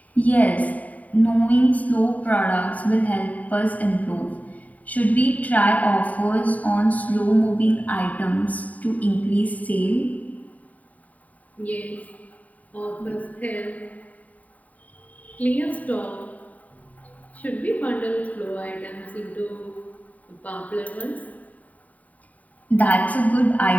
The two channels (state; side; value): late; right; 0.072 ms